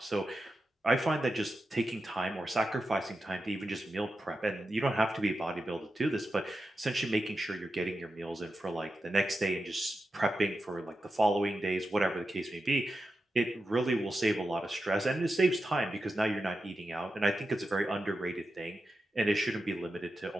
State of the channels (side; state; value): both; normal; correlation 0.90